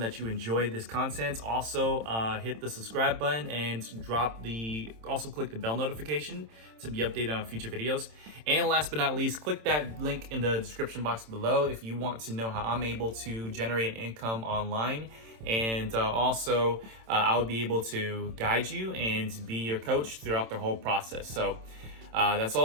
you enjoyed this content. Also, hit the subscribe button and also click the bell notification to be updated on future videos. And last but not least, click that link in the description box below if you want to know how I'm able to generate income online. And also, I will be able to guide you and be your coach throughout the whole process. So that's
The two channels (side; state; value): left; late; 27 ms